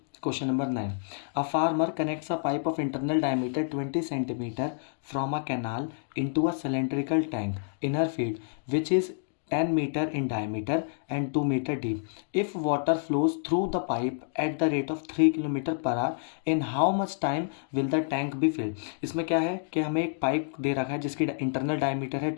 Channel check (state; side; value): silent; right; digital silence